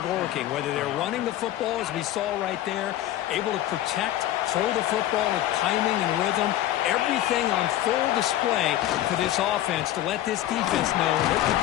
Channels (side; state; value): right; quieter; 13.5 dB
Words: working, whether they're running the football, as we saw right there, able to protect, throw the football with timing and rhythm. everything on full display for this offense to let this defense know they could